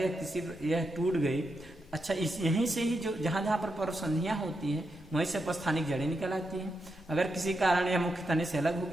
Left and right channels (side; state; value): both; normal; correlation 0.85